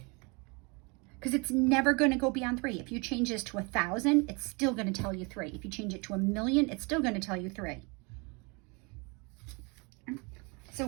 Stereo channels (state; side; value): quieter; left; 30.0 dB